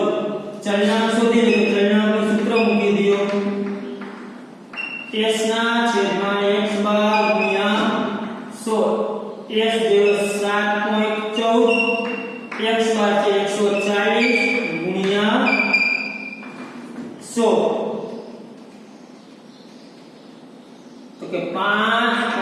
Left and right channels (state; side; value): identical; both; correlation 1.00